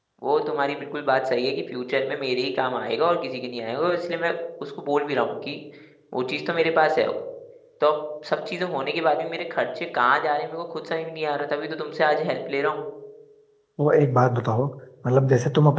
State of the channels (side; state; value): both; identical; correlation 1.00